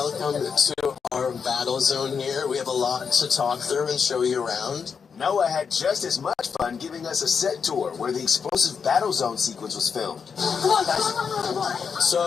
to our battle zone here. We have a lot to talk through and show you around. Noah had just as much fun giving us a set tour where the explosive battle zone sequence was filmed. Come on, guys.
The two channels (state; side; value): quieter; right; 6.2 dB